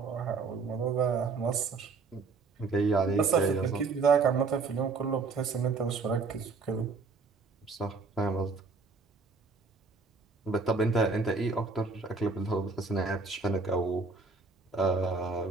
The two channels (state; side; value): quieter; left; 4.3 dB